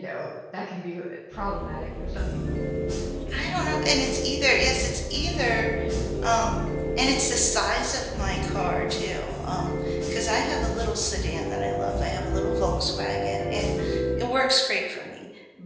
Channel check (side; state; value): both; identical; correlation 1.00